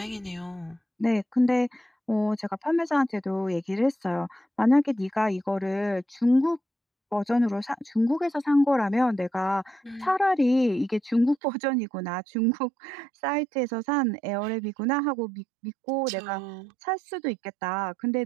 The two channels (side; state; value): left; drops out; at 11.4 s